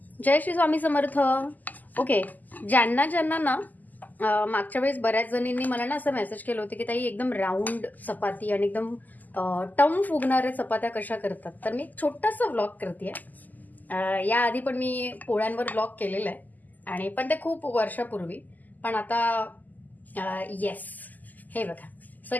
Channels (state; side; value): late; right; 0.082 ms